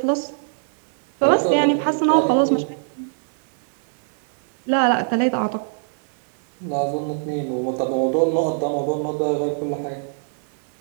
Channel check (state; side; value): silent; left; digital silence